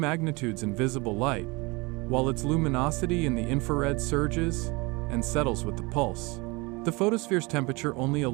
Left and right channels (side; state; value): left; quieter; 25.8 dB